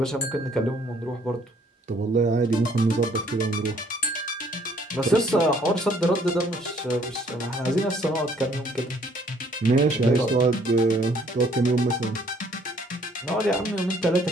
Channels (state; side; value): normal; both; correlation 0.62